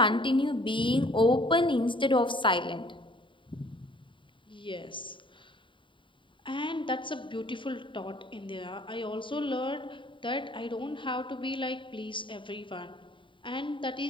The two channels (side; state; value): right; late; 0.24 ms